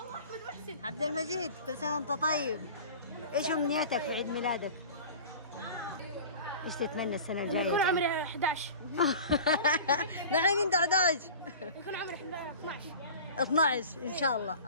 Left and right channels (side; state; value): both; inverted; correlation -0.39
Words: عبد المجيد، كل سنة وانت طيب. ايش امنيتك في عيد ميلادك؟ ايش تتمنى السنة الجاية؟ يكون عمري 11. الحين انت 11. يكون عمري 12. 12 ان شاء الله،